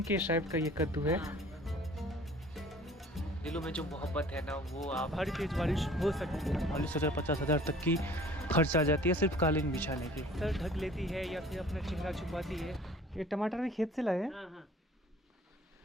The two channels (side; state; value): both; normal; correlation 0.49